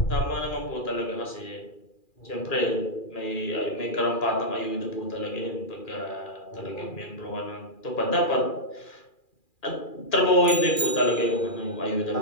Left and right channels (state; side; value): late; right; 2.4 ms